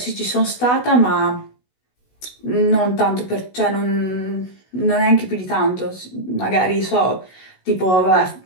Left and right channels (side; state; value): right; late; 16 ms